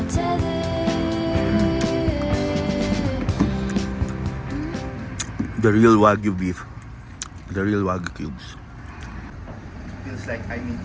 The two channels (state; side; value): identical; both; correlation 1.00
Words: tether. The real Wagyu beef. The real Wagyu cubes. Feels like I'm in